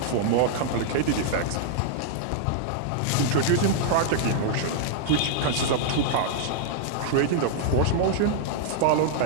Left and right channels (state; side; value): different; both; correlation -0.01